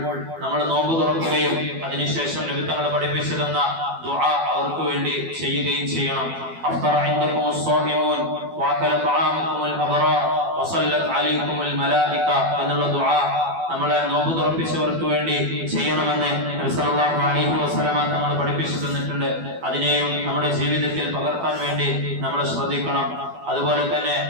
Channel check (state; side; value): late; left; 12 ms